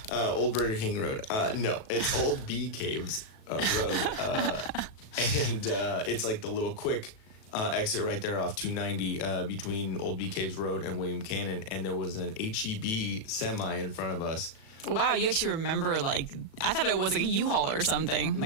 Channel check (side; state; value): right; late; 37 ms